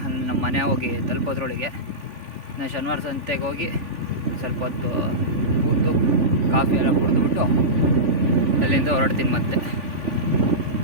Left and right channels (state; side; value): late; left; 3.4 ms